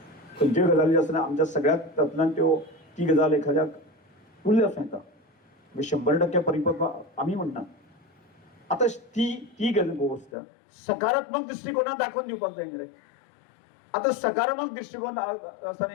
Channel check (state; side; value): drops out; right; at 10.3 s